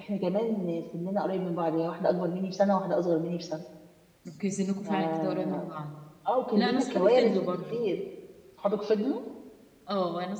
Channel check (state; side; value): identical; both; correlation 1.00